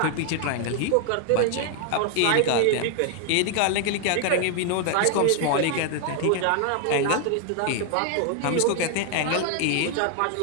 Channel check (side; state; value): both; different; correlation 0.00